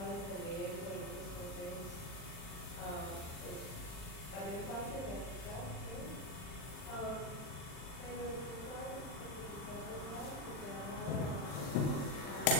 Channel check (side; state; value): right; late; 40 ms